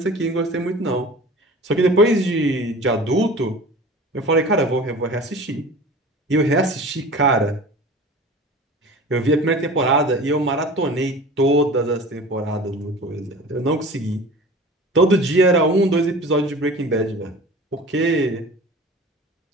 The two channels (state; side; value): normal; both; correlation 0.39